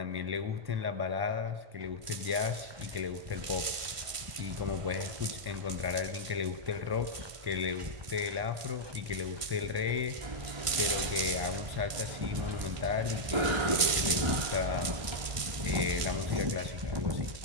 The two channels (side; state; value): left; late; 1.5 ms